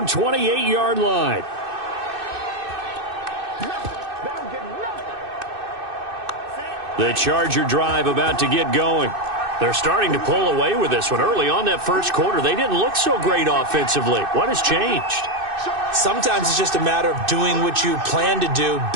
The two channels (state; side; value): late; left; 2.6 ms